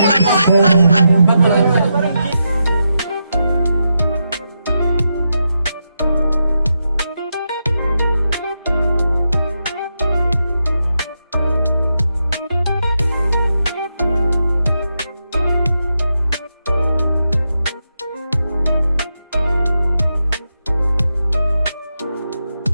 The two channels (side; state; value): both; inverted; correlation -0.85